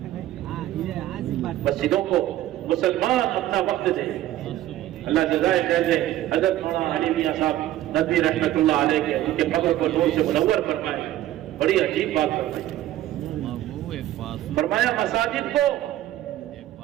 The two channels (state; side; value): quieter; left; 14.0 dB